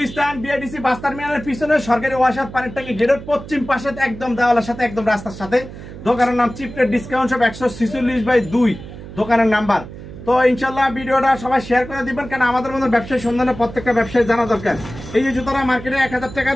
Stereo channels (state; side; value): noise; right; hum, 13 dB below the sound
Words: বিআইডিসি বাস টার্মিনালের পিছনে সরকারি ওয়াসার পানির ট্যাঙ্কি গেটের পশ্চিম পাশে, একদম দেওয়ালের সাথে, একদম রাস্তার সাথে। দোকানের নাম চিপ রেট ডিসকাউন্ট শপ, 146/2 দোকানের নাম্বার। তো ইনশাল্লাহ ভিডিওটা সবাই শেয়ার করে দিবেন, কারণ আমাদের মধ্যে ব্যবসায়ী সন্ধানে প্রত্যেকটা ব্যবসায়ী জানা দরকার। এই যে জুতারা মার্কেটে 1000